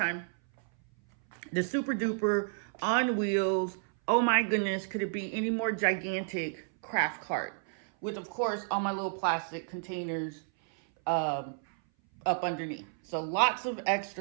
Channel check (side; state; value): left; silent; 57 dB below the other